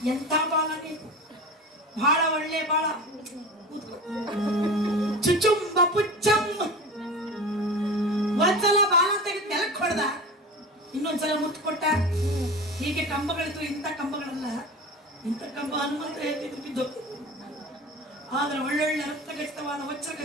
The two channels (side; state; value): both; normal; correlation 0.32